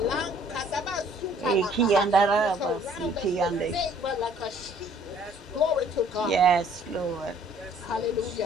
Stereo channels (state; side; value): normal; both; correlation 0.58